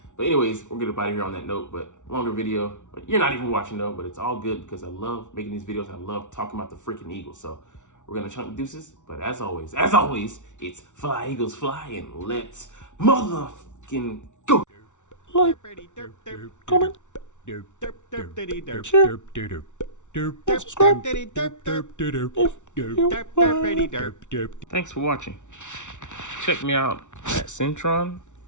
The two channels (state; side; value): late; right; 0.85 ms